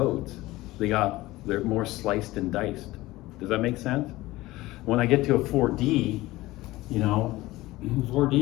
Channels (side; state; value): right; quieter; 18.4 dB